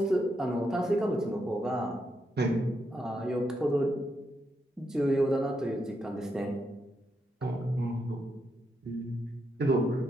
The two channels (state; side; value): normal; both; correlation 0.81